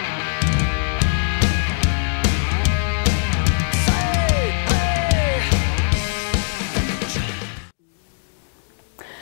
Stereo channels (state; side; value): silent; right; digital silence